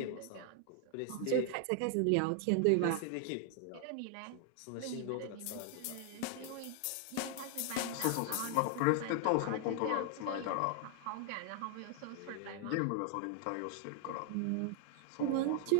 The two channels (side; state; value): both; different; correlation 0.00